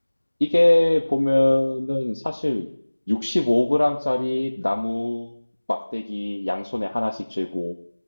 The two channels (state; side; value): inverted; both; correlation -1.00